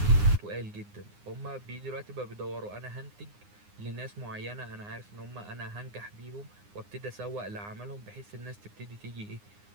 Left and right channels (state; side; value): late; left; 9.7 ms